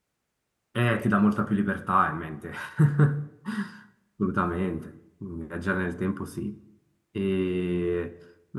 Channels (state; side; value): identical; both; correlation 1.00